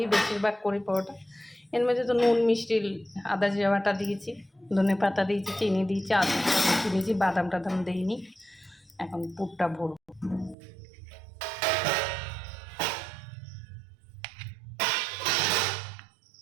বেশিরভাগ করি পরোটা। এর মধ্যে তো নুন মিষ্টি আদা জিরা বাটা দিয়েছি, ধনে পাতা দিয়েছি, চিনি দিয়েছি, আদা দিয়েছি, বাদাম টাদাম দিইনি। এখন পুরটা ভরবো।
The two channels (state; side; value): drops out; left; at 10.6 s